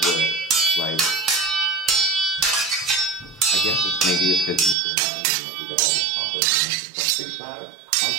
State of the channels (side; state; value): left; drops out; at 4.8 s